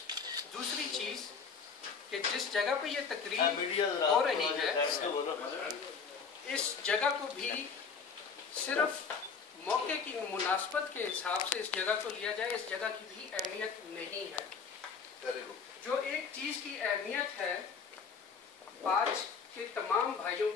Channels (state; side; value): quieter; right; 5.7 dB